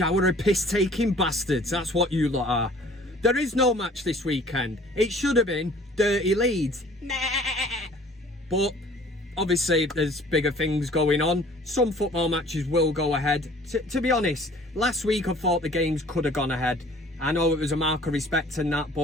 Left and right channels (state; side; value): normal; both; correlation 0.52